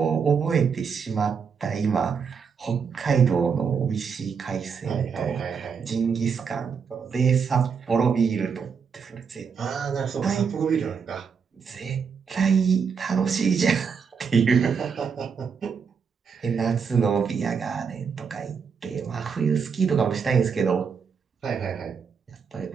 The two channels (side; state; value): left; quieter; 6.2 dB